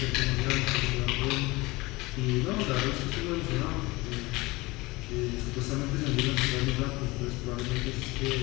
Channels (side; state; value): right; quieter; 22.1 dB